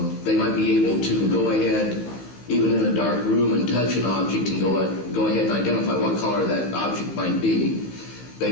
they might be able to go ahead, even in a dark room, and touch an object and go ahead and identify what color that object might be.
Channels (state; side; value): late; right; 15 ms